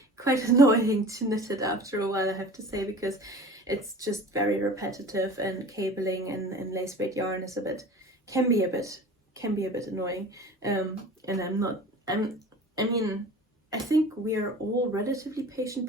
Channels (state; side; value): normal; both; correlation 0.40